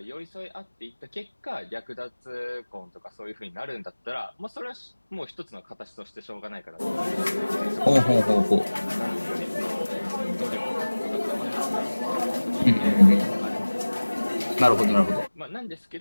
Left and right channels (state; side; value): inverted; both; correlation -1.00